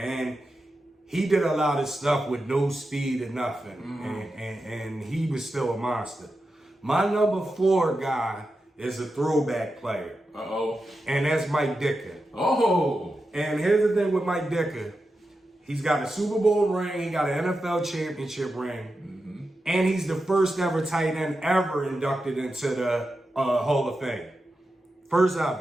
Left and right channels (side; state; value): both; normal; correlation 0.90